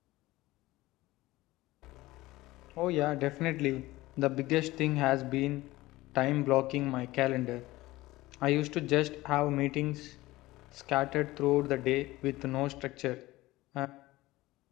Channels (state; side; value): quieter; right; 18.5 dB